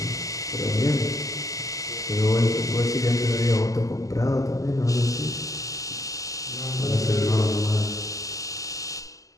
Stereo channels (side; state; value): right; late; 0.16 ms